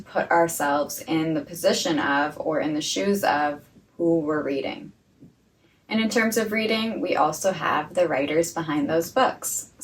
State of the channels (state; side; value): identical; both; correlation 1.00